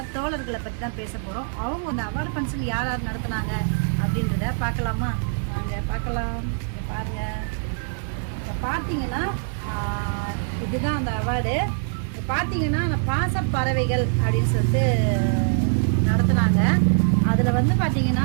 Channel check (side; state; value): left; silent; digital silence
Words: தோழர்களை பற்றி தான் பேச போகிறோம். அவங்க அந்த அவார்டு ஃபங்க்ஷன் யார் யார் நடத்துனாங்க அப்படின்றத பார்க்கலாமா? வாங்க பார்க்கலாம். பாருங்கள், இப்போ பார்த்தீங்கன்னா இதுதான் அந்த அவார்டு. பார்த்தீங்கன்னா அந்த பாசப்பறவைகள் அப்படின்னு சொல்லிட்டு நடத்துனாங்க. அதில் வந்து பார்த்தீங்கன்னா